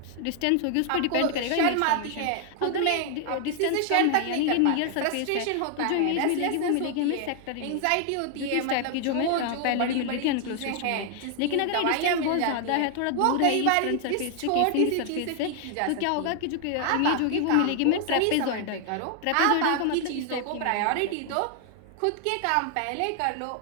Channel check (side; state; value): both; different; correlation 0.00